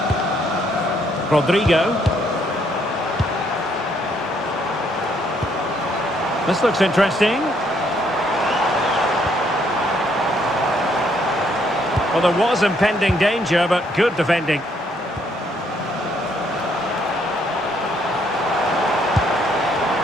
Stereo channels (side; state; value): both; normal; correlation 0.69